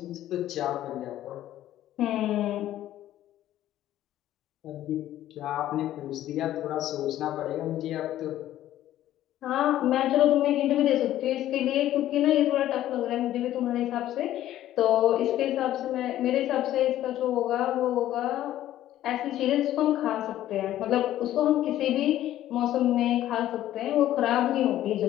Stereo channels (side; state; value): right; quieter; 13.1 dB